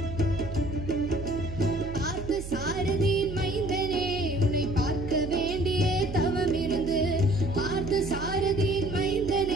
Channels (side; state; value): right; noise; hum, 9 dB below the sound